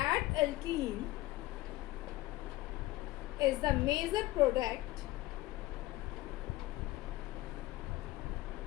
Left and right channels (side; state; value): right; quieter; 18.2 dB